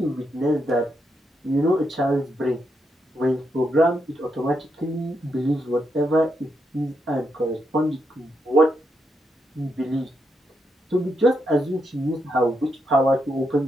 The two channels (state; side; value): normal; both; correlation 0.81